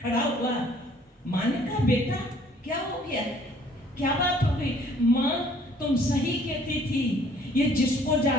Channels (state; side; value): normal; both; correlation 0.58